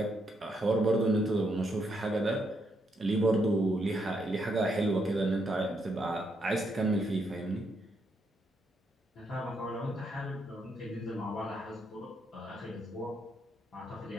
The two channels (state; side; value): normal; both; correlation 0.77